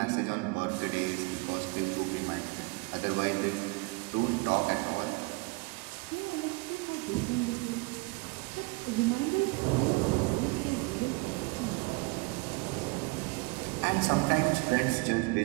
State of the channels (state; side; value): quieter; left; 27.5 dB